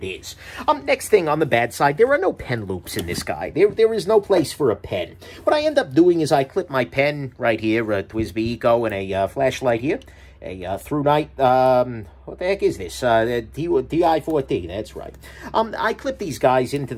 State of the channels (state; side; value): identical; both; correlation 1.00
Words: is. Next thing on the bad side, there are no pen loops in this guy. There is no place for a pen. What I end up doing is I clip my pen right here, a TWSBI Eco, and a flashlight here, a Through Night, what the heck is this? TI-4T, that's right. I clip these guys into